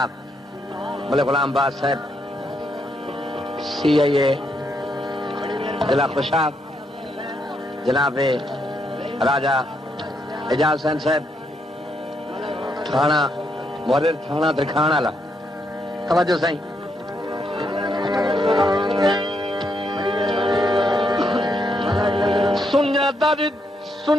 मलिक गुलाम बाद साहब CIA जिला खुशाब, जनाब राजा एजाज हुसैन साहब थाना मुहर्रिर थाना तरखान वाला, तवज्जो साईं। सुन्या दर्द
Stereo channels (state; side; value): normal; both; correlation 0.77